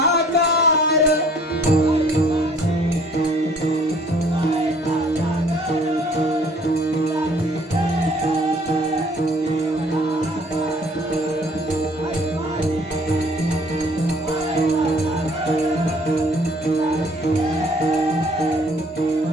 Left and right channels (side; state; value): both; normal; correlation 0.57